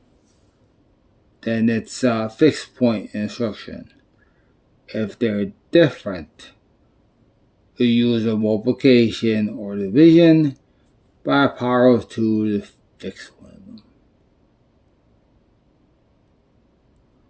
then it's a fixed point instruction. If they're different, you use a multiplication or division by power of 2 to fix one of them.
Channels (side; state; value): both; identical; correlation 1.00